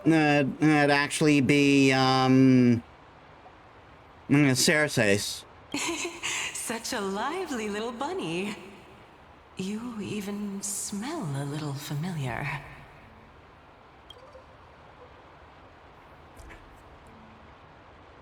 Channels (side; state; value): both; identical; correlation 1.00